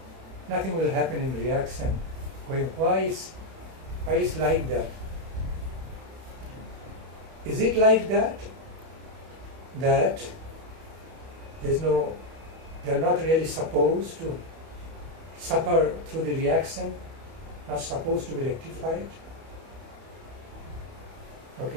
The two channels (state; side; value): late; left; 31 ms